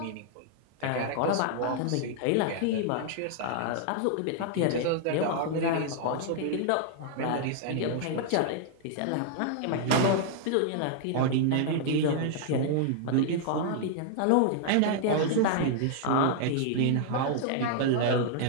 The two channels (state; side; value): different; both; correlation -0.01